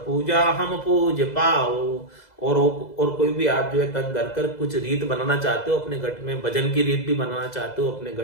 पूजा हम पूज पाओ। और कोई भी आप जो है तन धर कर कुछ रीत बनाना चाहते हो अपने घट में, भजन की रीत भी बनाना चाहते हो अपने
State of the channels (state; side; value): late; right; 2.0 ms